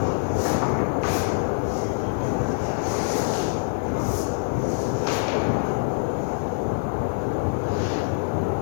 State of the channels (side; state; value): right; silent; digital silence